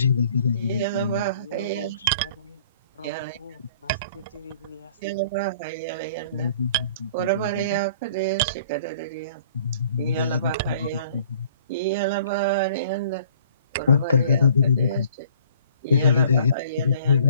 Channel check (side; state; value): both; inverted; correlation -0.55